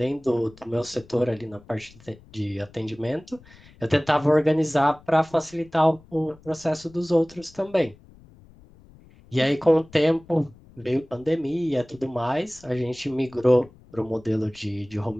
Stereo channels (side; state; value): left; noise; rumble, 25 dB below the sound